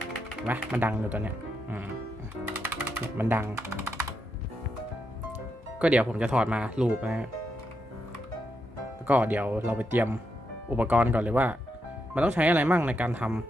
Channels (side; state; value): both; normal; correlation 0.83